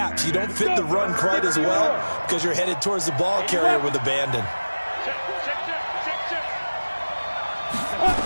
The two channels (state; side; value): inverted; both; correlation -1.00